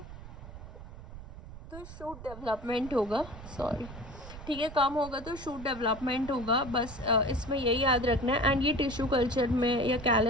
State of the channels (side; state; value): right; noise; rumble, 14 dB below the sound